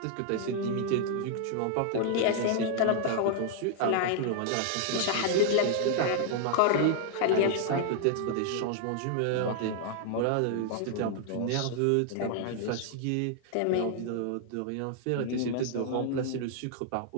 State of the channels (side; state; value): both; different; correlation 0.00